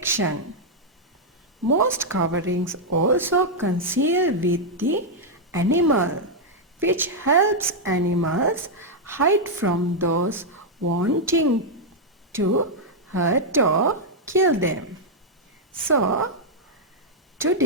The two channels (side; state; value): both; normal; correlation -0.03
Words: Most coverings also conceal with the animal, which helps animals hide from those wanting to hurt or kill them. So,